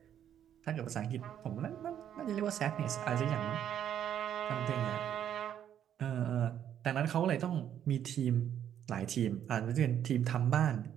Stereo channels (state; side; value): quieter; left; 9.9 dB